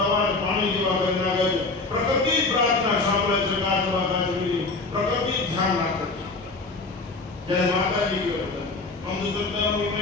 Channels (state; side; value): quieter; right; 3.5 dB